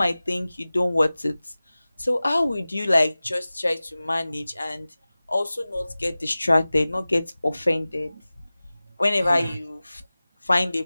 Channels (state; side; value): inverted; both; correlation -0.97